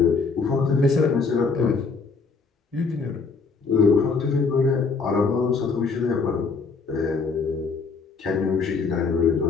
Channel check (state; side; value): quieter; right; 4.7 dB